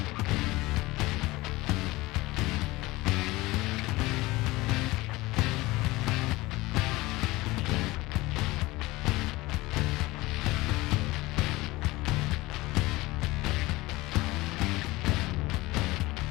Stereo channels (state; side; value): quieter; right; 20.3 dB